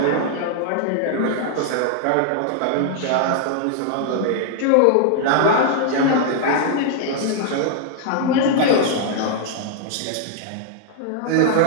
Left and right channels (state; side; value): different; both; correlation 0.00